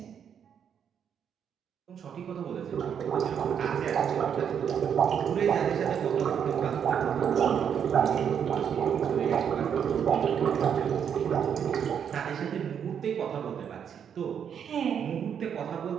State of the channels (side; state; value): left; quieter; 8.0 dB